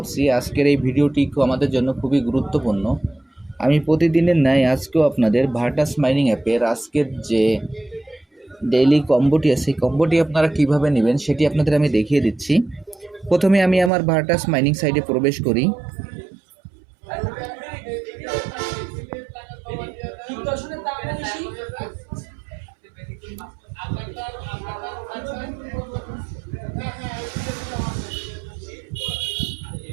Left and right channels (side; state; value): left; drops out; at 13.9 s